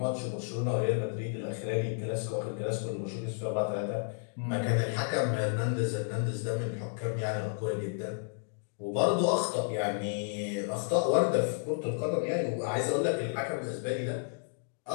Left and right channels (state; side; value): silent; right; digital silence